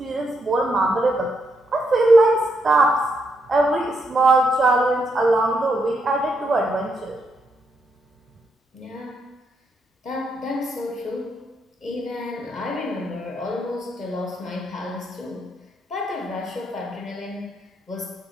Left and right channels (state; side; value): normal; both; correlation 0.78